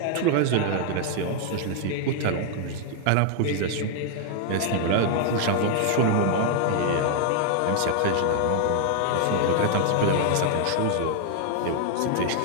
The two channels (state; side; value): different; both; correlation 0.00